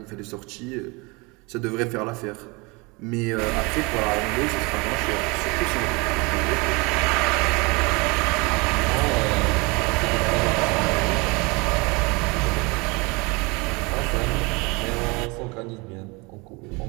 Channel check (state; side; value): quieter; left; 27.1 dB